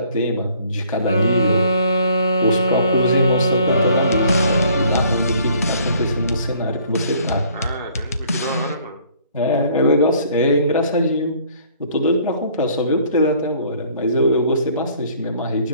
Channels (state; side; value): inverted; both; correlation -0.59